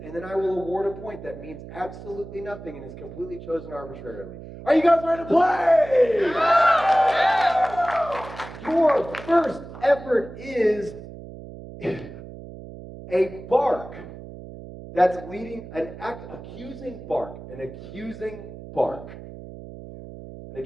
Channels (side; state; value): right; noise; hum, 14 dB below the sound